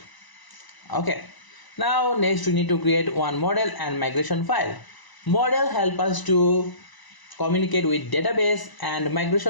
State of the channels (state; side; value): late; right; 1.0 ms